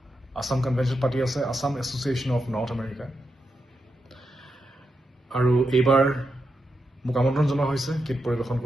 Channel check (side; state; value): both; normal; correlation 0.85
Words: আছাম কনভেনশ্যন পাতি আছে Assam association of north America. আৰু এইবাৰ মোক আমন্ত্ৰণ জনোৱা হৈছে গীত পৰিৱেশন